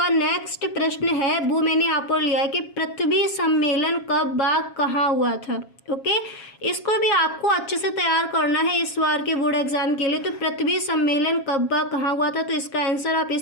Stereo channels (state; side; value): late; right; 7.3 ms